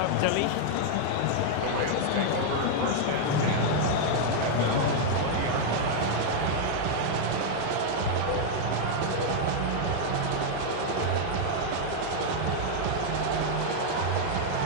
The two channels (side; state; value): both; different; correlation 0.00